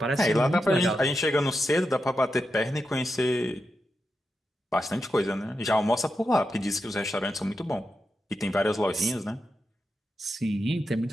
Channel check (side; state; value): both; normal; correlation 0.87